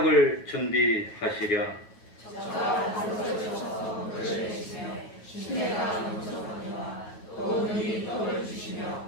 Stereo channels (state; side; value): late; right; 9.3 ms